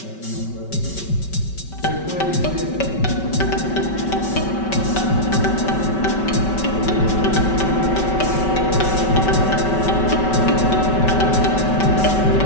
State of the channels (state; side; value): late; right; 5.2 ms